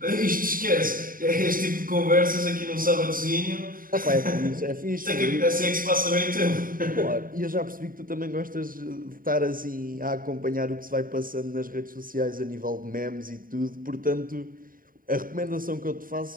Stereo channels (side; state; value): left; late; 0.41 ms